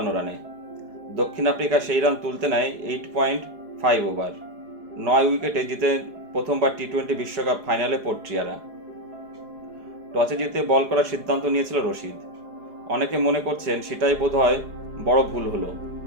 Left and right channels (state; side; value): late; left; 4.8 ms